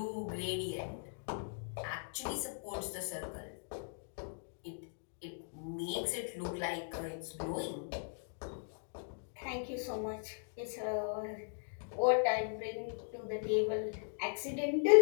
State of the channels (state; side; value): silent; right; digital silence